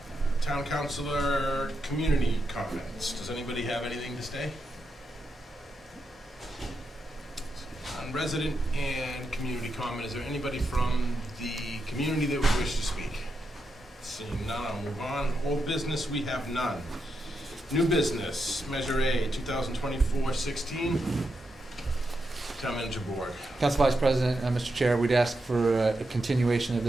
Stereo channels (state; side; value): normal; both; correlation 0.85